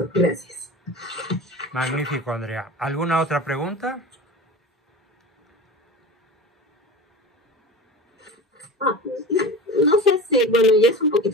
gracias. Magnífico, Andrea. ¿Alguna otra pregunta? Ah, no sé si, bueno, ya es un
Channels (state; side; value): normal; both; correlation 0.33